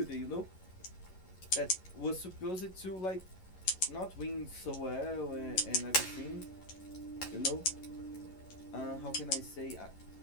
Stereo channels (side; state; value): right; late; 11 ms